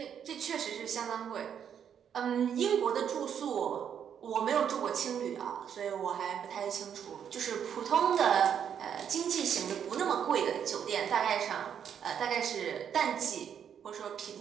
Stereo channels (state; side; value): quieter; left; 8.4 dB